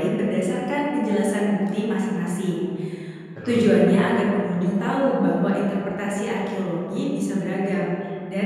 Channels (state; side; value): identical; both; correlation 1.00